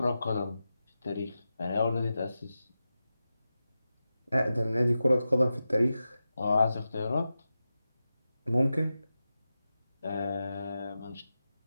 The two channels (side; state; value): both; inverted; correlation -0.92